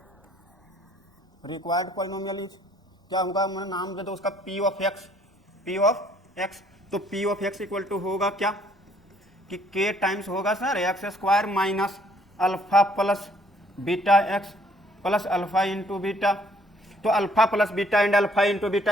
रिक्वायर्ड पॉलिनोमियल इज क्या होगा, मैंने नाम दे दो उसका, P of x, P of x। तो P of x equal to होगा क्या कि k टाइम्स होगा sir x² minus alpha plus beta x plus alpha into beta. तो alpha plus beta and alpha into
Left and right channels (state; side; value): normal; both; correlation 0.63